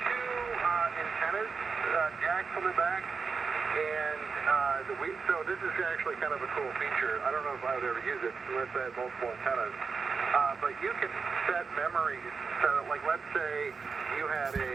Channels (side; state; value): left; quieter; 5.1 dB